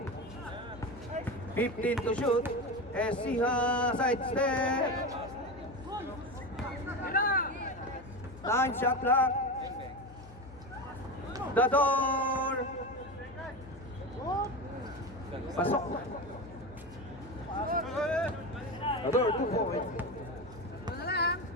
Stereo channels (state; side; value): noise; left; hum, 18 dB below the sound